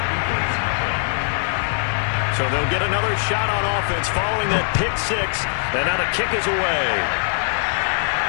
So they'll get another shot on offense following that pick six. And now the kick is away.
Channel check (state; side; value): silent; right; digital silence